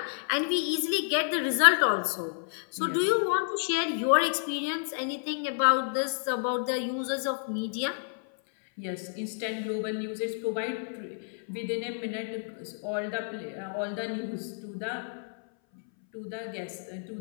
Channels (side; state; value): right; silent; 58 dB below the other